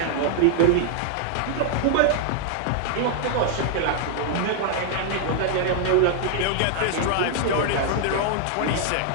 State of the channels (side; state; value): both; different; correlation 0.00